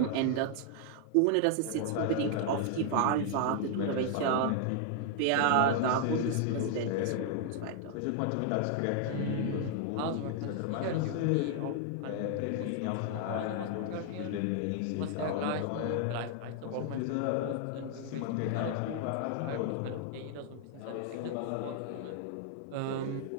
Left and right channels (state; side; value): different; both; correlation 0.00